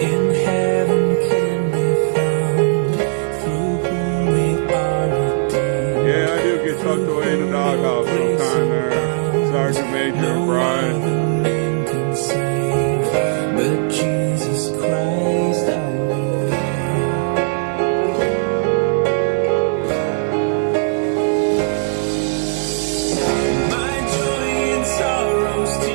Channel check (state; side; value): silent; left; digital silence